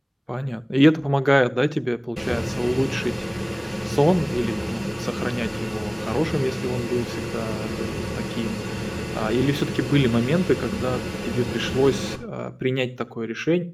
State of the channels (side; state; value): both; identical; correlation 1.00